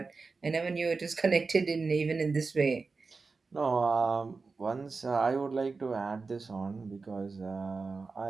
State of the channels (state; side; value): quieter; left; 4.3 dB